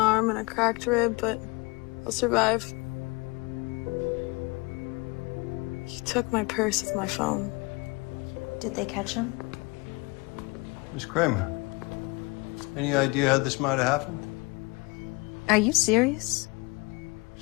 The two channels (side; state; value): right; quieter; 26.9 dB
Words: and a cracked rib, but I'll survive. He took my purse with my phone. Did they catch him? Miss Kramer, any idea how this might have happened? Are you serious?